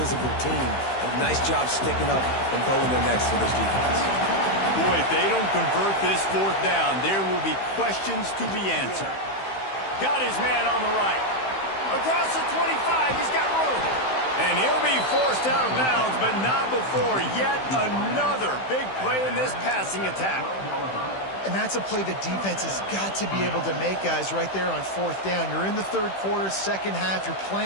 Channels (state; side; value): late; right; 15 ms